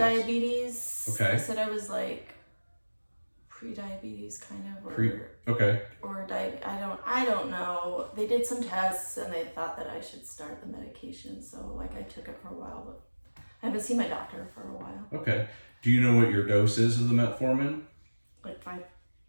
Diabetes. Okay. I said I was like pre-diabetes kind of, Okay. or I don't know. They did some tests and they thought that I should start the medication, so like I took it for a while, but I haven't seen my doctor for a while. Okay. Do you know what your dose is of the metformin? Like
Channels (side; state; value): both; inverted; correlation -1.00